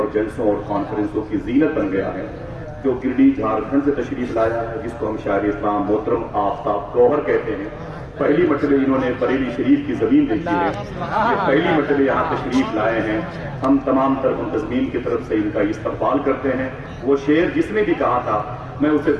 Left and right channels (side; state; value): both; identical; correlation 1.00